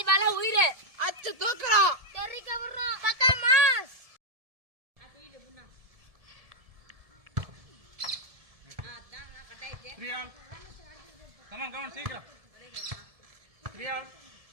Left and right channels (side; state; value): left; late; 1.7 ms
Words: உயிரே அச்சு தூக்குறோம், தெரிக்க விடுறோம், பக்கா மாஸ். அடியில புண்ணா அதான் நான் கட்டாயிட்டேன். ரியால் கமான் சீக்கிரம். ரியால்